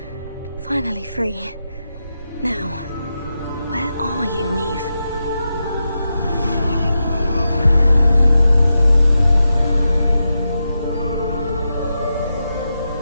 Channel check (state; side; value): inverted; both; correlation -0.88